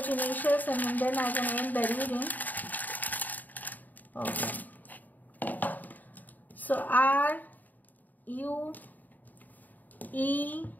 initials and then I can end the reading. Okay, so R U E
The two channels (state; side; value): late; right; 0.084 ms